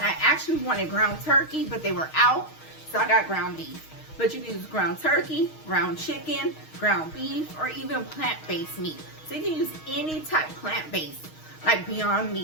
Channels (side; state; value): right; late; 6.4 ms